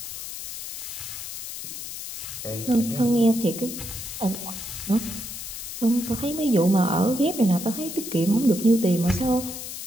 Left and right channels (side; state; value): left; noise; hiss, 8 dB below the sound